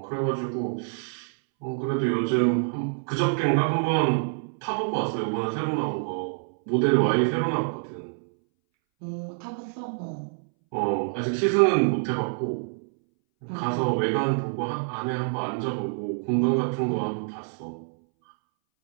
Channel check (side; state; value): left; silent; 61 dB below the other